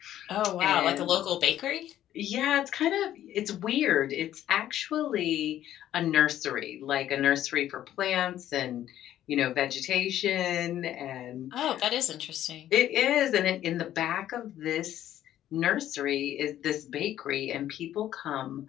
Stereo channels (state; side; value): quieter; right; 12.1 dB